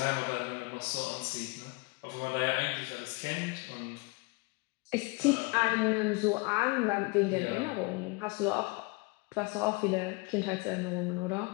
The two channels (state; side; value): quieter; right; 27.3 dB